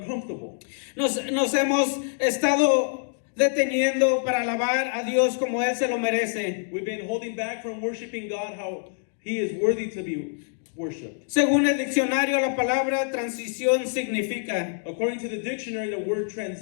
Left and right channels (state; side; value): silent; right; 61 dB below the other